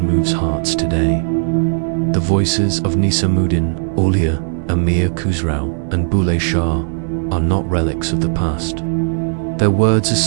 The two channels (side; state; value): left; silent; digital silence